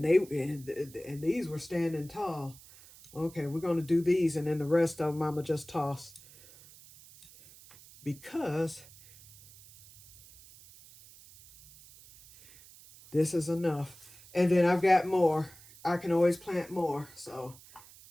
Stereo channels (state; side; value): noise; right; hiss, 22 dB below the sound